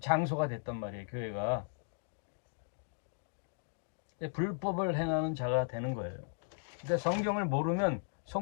장소가 됐단 말이에요. 교회가. 불법을 행하는 자가 되는 거예요. 근데 성경을 모르면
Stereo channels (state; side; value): silent; right; digital silence